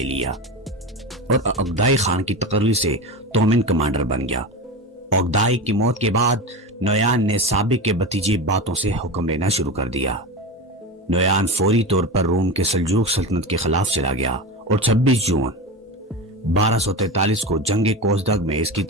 لیا اور عقدائی خان کی تقرری سے تومن کمانڈر بن گیا. عقدائی کی موت کے بعد نویان نے سابق کے بھتیجے باتوں سے حکم لینا شروع کر دیا. نویان فوری طور پر روم کے سلجوق سلطنت کے خلاف چلا گیا اور 26 جون 1243 کو جنگ کوزدگ میں اس کی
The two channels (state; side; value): normal; both; correlation 0.24